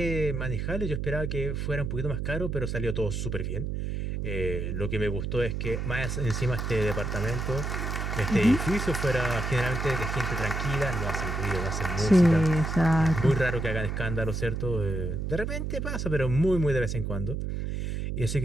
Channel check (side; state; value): right; noise; hum, 2 dB below the sound